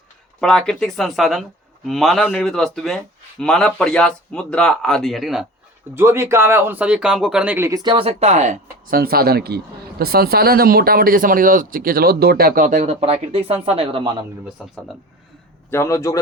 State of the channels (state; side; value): normal; both; correlation 0.35